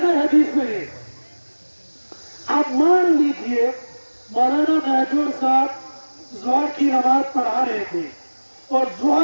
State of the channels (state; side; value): inverted; both; correlation -1.00